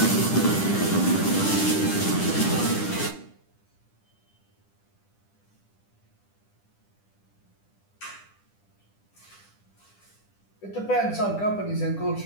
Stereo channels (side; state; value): right; late; 10 ms